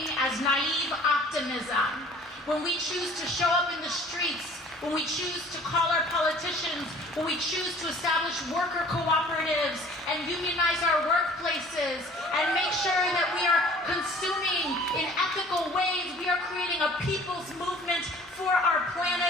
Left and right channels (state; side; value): normal; both; correlation 0.50